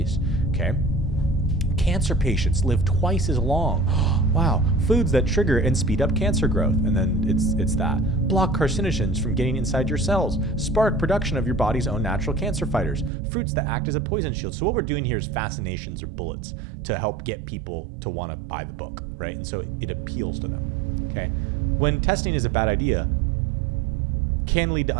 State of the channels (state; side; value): drops out; left; at 13.1 s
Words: Okay. Cancer patients live twice as long. Wow. Foods that trigger and speed up cancer growth. And then it's that. Block carcinogens from getting inside your cells. Spark production of your body's own natural cancer fighters. Fruits that act as a poison shield. So what we're doing here is fascinations or bullets to help get people to want to buy the book, right? And so it appeals to them. Okay. When testing is a bad idea, can lead to